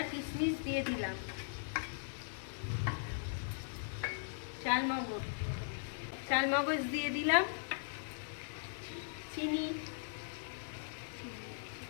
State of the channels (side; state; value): right; silent; digital silence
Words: কিশমিশ দিয়ে দিলাম, চালমগজ দিয়ে দিলাম, চিনি